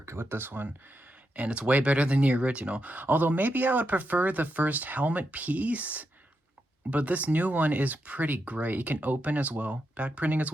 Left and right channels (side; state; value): both; normal; correlation 0.84